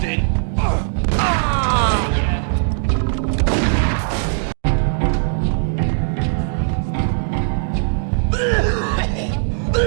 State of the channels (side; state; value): left; silent; digital silence